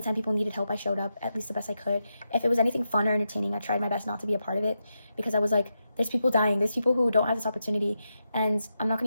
people needed help, I showed up at least the best I could. If it was anything fun or entertaining, I tried my best not to be a part of it, because I was like, there's people dying, there's people who don't have this opportunity, and I'm not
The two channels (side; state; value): both; inverted; correlation -0.86